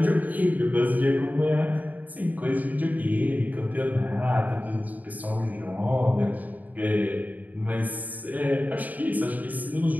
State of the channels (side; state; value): left; late; 0.079 ms